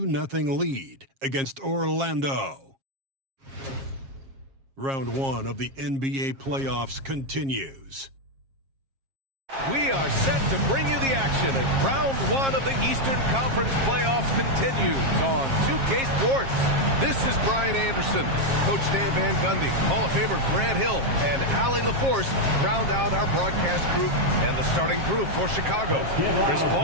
lead against Orlando. Round 1 of the NBA playoffs continues. We are set to bring you the action as round 1 of the Eastern Conference playoffs continues on 2K Sports. This is Brian Anderson. Coach Stan Van Gundy, Hall of Famer Grant Hill, and Allie LaForce round out our broadcast group and the starting group for Chicago. Chris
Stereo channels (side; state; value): left; late; 7.4 ms